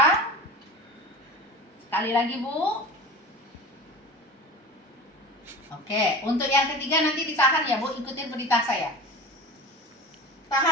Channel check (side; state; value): both; normal; correlation 0.33